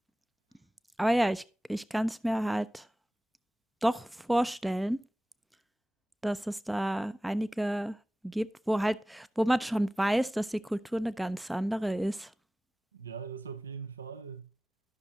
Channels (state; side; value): normal; both; correlation 0.97